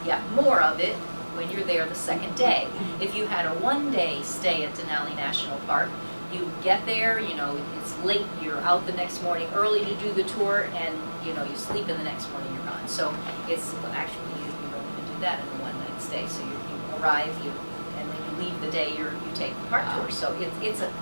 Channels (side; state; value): both; inverted; correlation -1.00